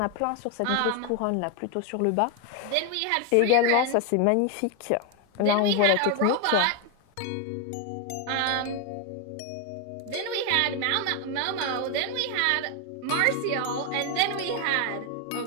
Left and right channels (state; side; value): different; both; correlation 0.01